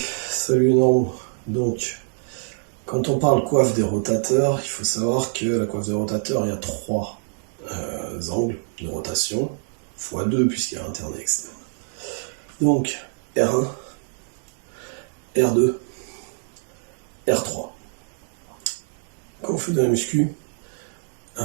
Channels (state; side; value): silent; left; digital silence